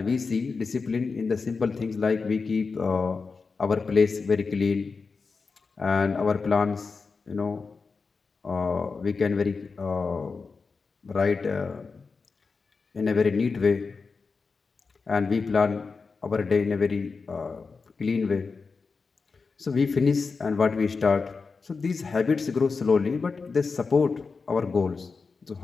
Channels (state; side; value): quieter; right; 4.7 dB